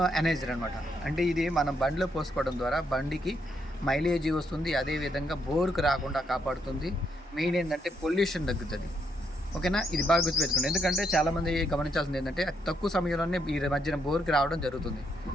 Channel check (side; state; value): both; normal; correlation 0.76